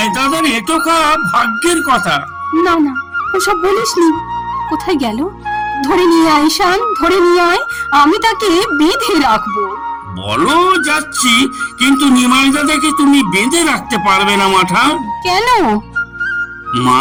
দাদার এটকা ভাগ্যের কথা। না না, ওসব বলিসনি। কোথায় গেল? ধরে নিয়ে আয় ঈশান, ধরে নিয়ে আয়, আমি তাকে বেঁধে রাখবো। বলো যাচ্ছি, কিন্তু নিমাই দাদাকে তুমি বেঁধে রাখতে পারবে না মাঠান। কেন? মা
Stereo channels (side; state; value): both; identical; correlation 1.00